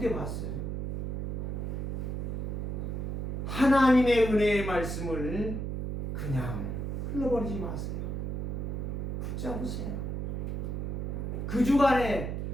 때 봤어요. 하나님의 은혜의 말씀을 그냥 흘러버리지 마세요. 붙잡으세요. 그 주간에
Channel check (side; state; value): right; noise; hum, 2 dB below the sound